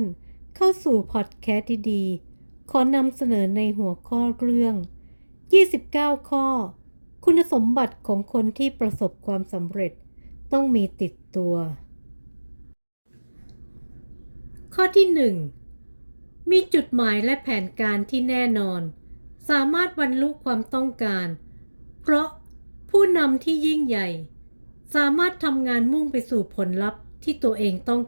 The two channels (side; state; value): both; inverted; correlation -1.00